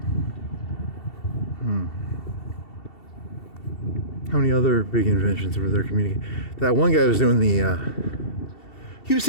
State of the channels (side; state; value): right; late; 2.7 ms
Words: How many other big inventions were there communicating? That one guy was doing he was